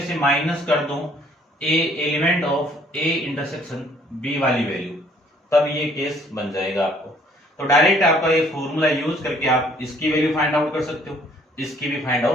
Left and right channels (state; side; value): normal; both; correlation 0.61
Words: से माइनस कर दूं A element of A intersection B वाली वैल्यू, तब ये केस बन जाएगा आपको। तो डायरेक्ट आपका ये फॉर्मूला यूज करके आप इसकी वैल्यू फाइंड आउट कर सकते हो, इसकी भी फाइंड